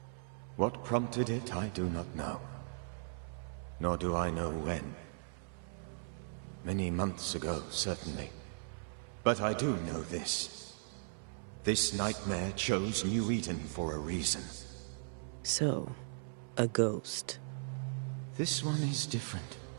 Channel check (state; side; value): silent; left; 52 dB below the other